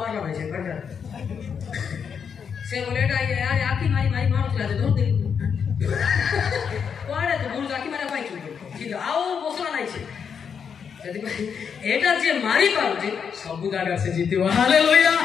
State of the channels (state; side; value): quieter; right; 6.9 dB